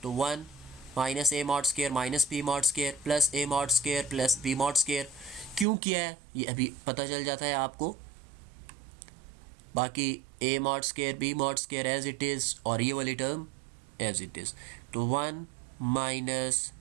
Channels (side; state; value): left; drops out; at 5.7 s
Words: तो 1 minus A mod square minus b mod square plus a mod square plus B mod square. क्यों किया है ये अभी पता चल जाता है आपको। बाकी a mod square B mod square as it is और ये वाली टर्म एज इट इज़। तो 1 minus